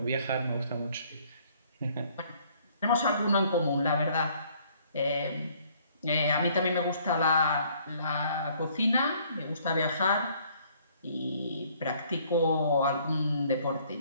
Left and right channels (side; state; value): both; inverted; correlation -0.61